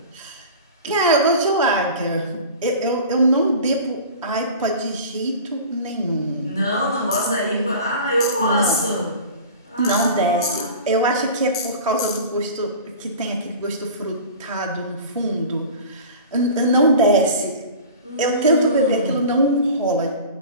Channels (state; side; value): inverted; both; correlation -0.38